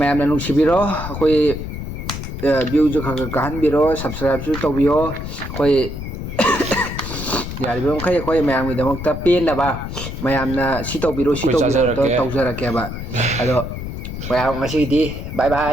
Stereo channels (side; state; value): left; noise; rumble, 7 dB below the sound